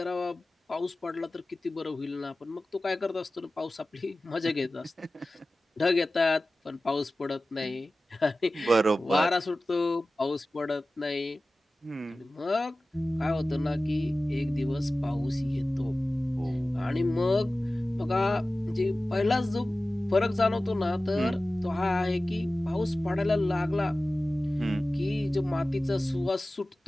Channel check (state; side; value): normal; both; correlation 0.96